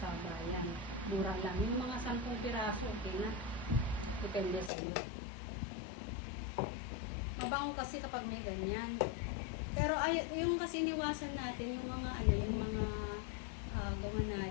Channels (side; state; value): right; drops out; at 4.7 s